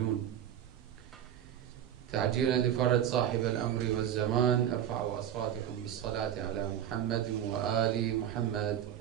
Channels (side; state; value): left; quieter; 10.3 dB